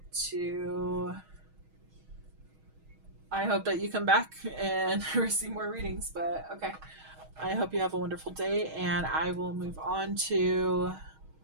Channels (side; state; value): left; late; 6.3 ms